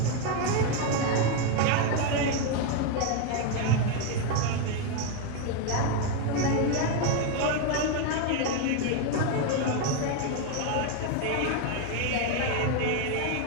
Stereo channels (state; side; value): different; both; correlation 0.01